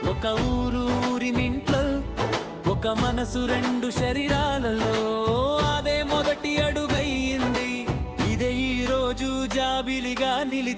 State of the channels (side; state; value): both; identical; correlation 1.00